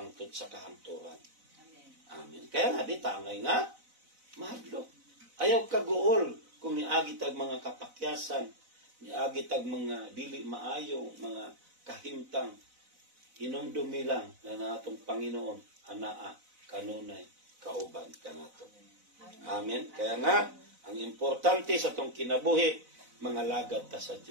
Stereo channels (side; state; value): left; late; 4.0 ms